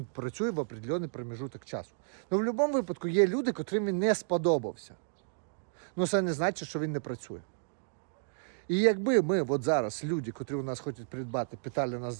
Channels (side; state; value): left; silent; digital silence